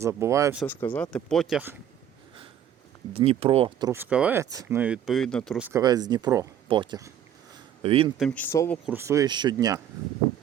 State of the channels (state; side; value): quieter; left; 9.8 dB